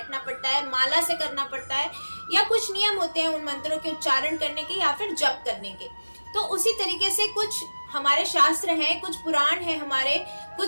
पड़ता है, माला से करना पड़ता है, या कुछ नियम होते हैं उन मंत्रों के उच्चारण करने के या फिर जप करने के। तो उसी तरीके से कुछ हमारे शास्त्र हैं, कुछ पुराण हैं, हमारे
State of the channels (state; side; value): inverted; both; correlation -1.00